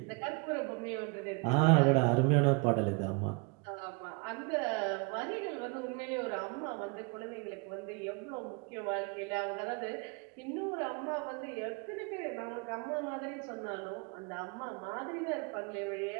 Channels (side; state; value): left; quieter; 30.8 dB